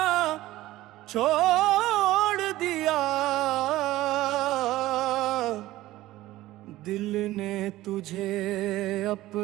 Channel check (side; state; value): left; quieter; 16.4 dB